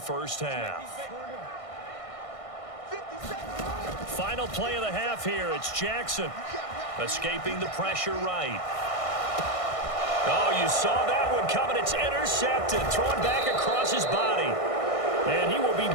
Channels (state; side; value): late; right; 1.6 ms